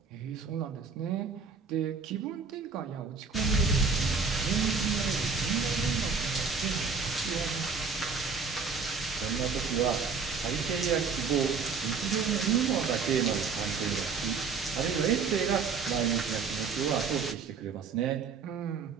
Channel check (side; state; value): left; quieter; 5.3 dB